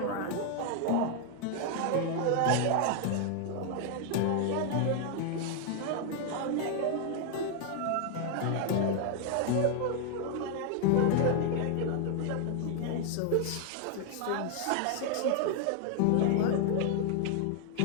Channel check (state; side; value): different; both; correlation 0.00